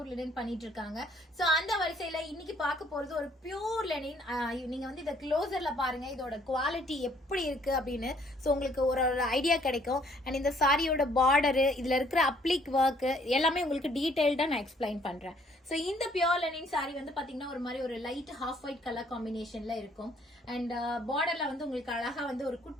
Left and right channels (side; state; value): both; normal; correlation 0.63